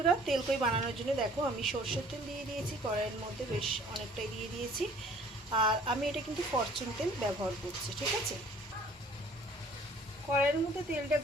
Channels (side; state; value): both; normal; correlation 0.54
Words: তেলকই বানানোর জন্য দেখো আমি সর্ষের তেল দিয়ে দিয়েছি কড়াইয়ের মধ্যে, বেশ অনেকটাই দিয়ে দিয়েছি। আর আমি এটা কিন্তু ফরচুন তেল ব্যবহার করছি। ঠিক আছে, কড়াইয়ের মধ্যে তেলটা